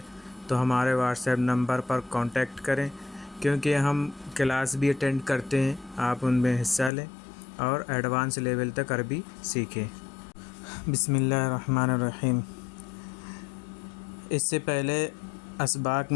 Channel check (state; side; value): drops out; right; at 6.9 s